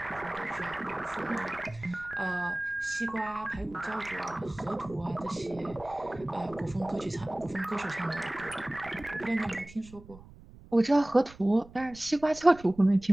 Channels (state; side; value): noise; right; rumble, 20 dB below the sound